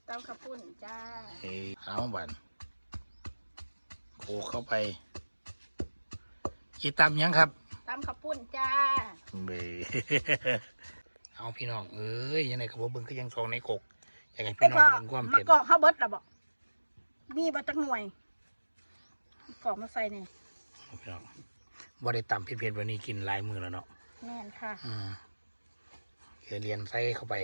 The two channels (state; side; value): inverted; both; correlation -1.00